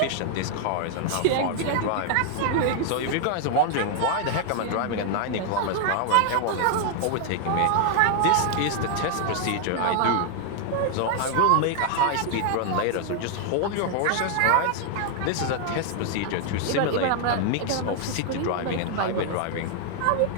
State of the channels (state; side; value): different; both; correlation 0.00